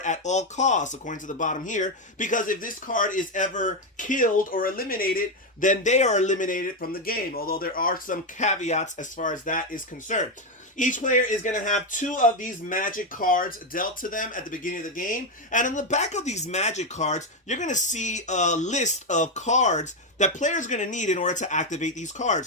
at all costs, according to the bottom here. Because if this card is ever killed or eliminated, then they are eliminated from the game, although there are some caveats as far as that is concerned. Each player is going to have two of these Magic cards dealt to them at the beginning of the game. And on the back of these Magic cards, you're going to see a list of cards that players are going to need in order to activate these cards.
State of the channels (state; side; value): normal; both; correlation 0.07